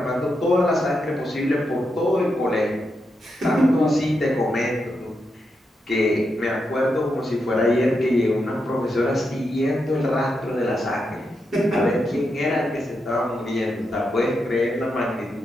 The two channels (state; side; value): normal; both; correlation 0.84